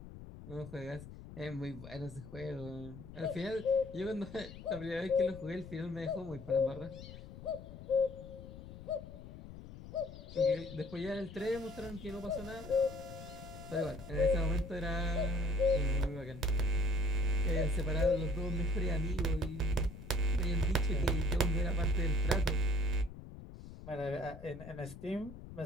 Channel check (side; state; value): left; noise; rumble, 14 dB below the sound